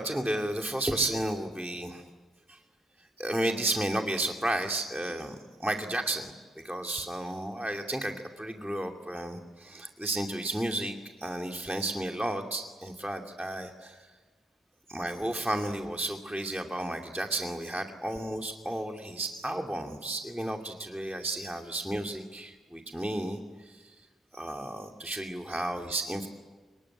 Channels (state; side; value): normal; both; correlation 0.73